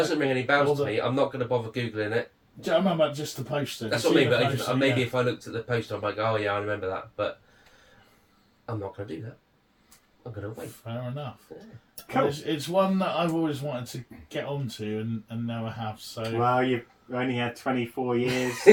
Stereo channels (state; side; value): identical; both; correlation 1.00